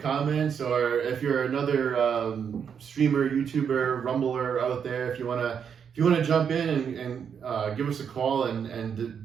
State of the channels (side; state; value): left; quieter; 7.3 dB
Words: or if you're another streamer, YouTuber, Rumbler out there, if you want to jump in and give us a call and